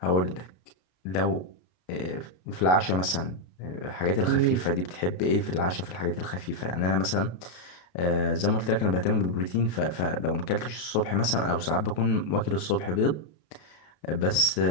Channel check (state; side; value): late; right; 33 ms